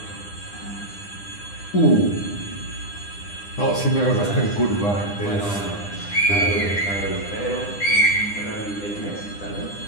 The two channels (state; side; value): late; right; 9.9 ms